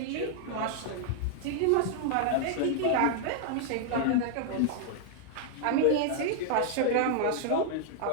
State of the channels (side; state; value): both; different; correlation -0.01